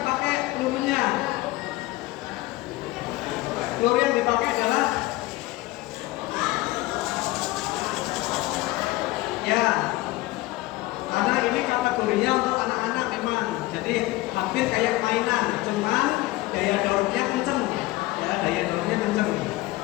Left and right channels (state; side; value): quieter; right; 19.0 dB